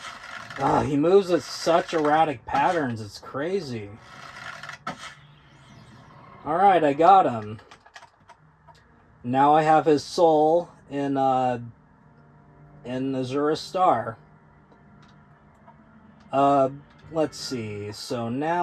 He moves at such erratic patterns. It's crazy. Alright, I got him. Now I have his soul in Azura's Star. Let's see. So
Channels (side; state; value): both; identical; correlation 1.00